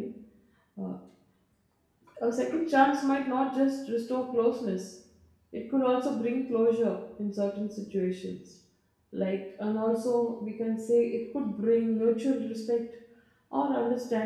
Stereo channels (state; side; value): identical; both; correlation 1.00